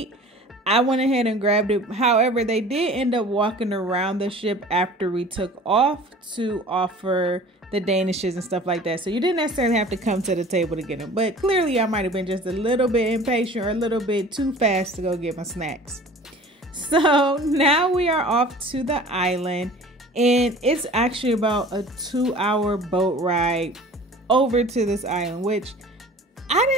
I went ahead and grabbed it. However, they did end up walking around the ship after we took off to offer the danishes and stuff like that. So you didn't necessarily have to come to the table to get them. But clearly I might have been just a little bit impatient or a little bit too fast to go get my snacks. So now we are off to the island, and it's actually about a 2-hour boat ride over to this island, which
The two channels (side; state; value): both; normal; correlation 0.44